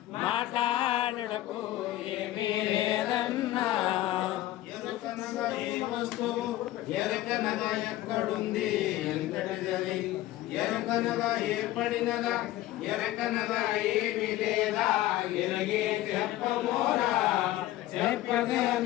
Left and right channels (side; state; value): right; quieter; 15.2 dB